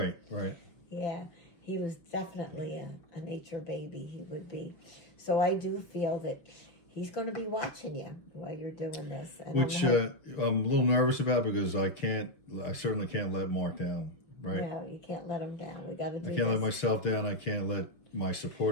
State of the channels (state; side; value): late; right; 6.2 ms